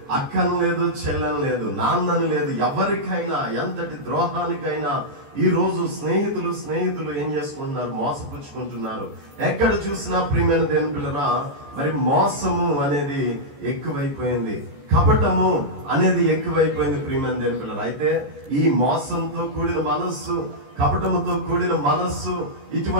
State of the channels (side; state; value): left; late; 14 ms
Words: అక్కని లేదు, చెల్లని లేదు, నాన్నని లేదు, ఎవరికైనా ఎంతటి ద్రోహానికైనా ఈ రోజు స్నేహితులు ఏం చేసుకుంటున్నారు? మోసపుచ్చుకుంటున్నారు. ఎక్కడ చూసినా ప్రియమైన దేవుని పిల్లరా, మరి మోసము అనేది ఎక్కువైపోయింది, కపటము అనేది ఎక్కువైపోయింది. ప్రియమైన దేవుని పిల్లరా, అయితే ఈ మోసంతో కూడిన మనస్సు, కపటముతో కూడిన మనస్సు,